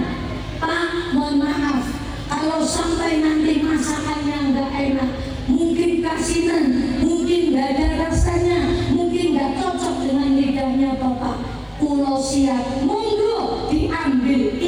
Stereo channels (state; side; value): identical; both; correlation 1.00